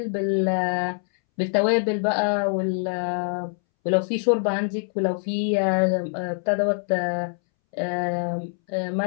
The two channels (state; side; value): silent; right; 62 dB below the other